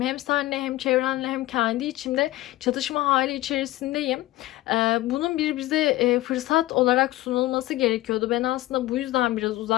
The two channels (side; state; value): right; quieter; 17.3 dB